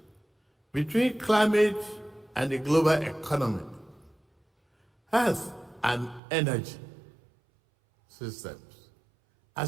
between climate and the global economy, health and energy systems,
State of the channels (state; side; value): drops out; left; at 6.2 s